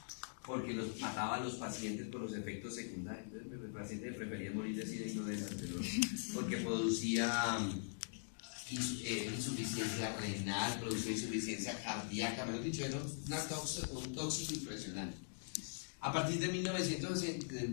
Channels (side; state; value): right; silent; digital silence